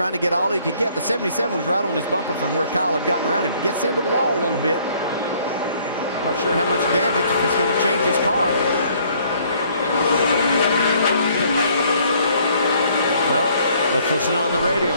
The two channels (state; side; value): inverted; both; correlation -0.62